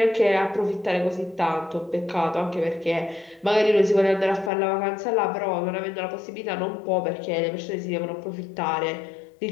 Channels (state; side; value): drops out; right; at 4.5 s